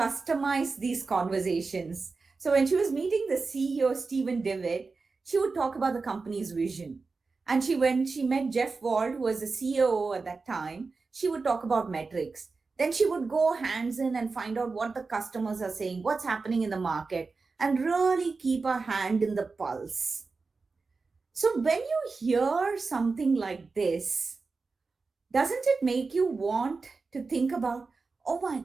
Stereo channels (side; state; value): left; quieter; 4.2 dB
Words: these conversations. So when she was meeting the CEO, Stephen Devitt, she would talk about the company's vision. And when she met Jeff Wald, who was the CEO at that time, she would talk about metrics. Then she would go hands in and find out what the customers are saying, what's happening in the market, and really keep her hand in the pulse. So when you hear something like this, doesn't it make you want to think about, oh my